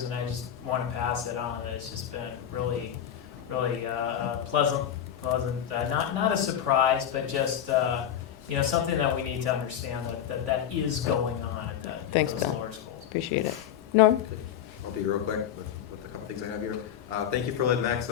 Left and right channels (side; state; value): right; quieter; 9.8 dB